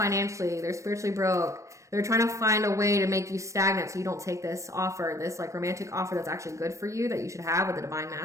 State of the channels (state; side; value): late; left; 0.15 ms